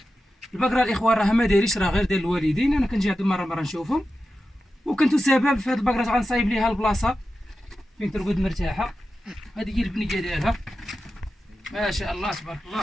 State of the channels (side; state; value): both; normal; correlation 0.92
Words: البقره الاخوان راها ما دايريش، راه غير ديال الوالدين. انا كنجي عند مره نشوفهم، وكنت سبب في هاد البقره غنصايب ليها البلاصه فين ترقد مرتاحه. هذه هي البنيه ديالها ما شاء الله تبارك